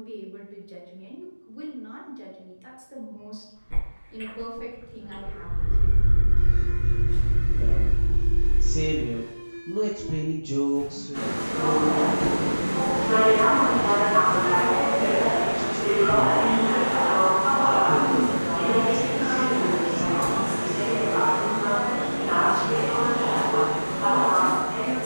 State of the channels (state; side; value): inverted; both; correlation -1.00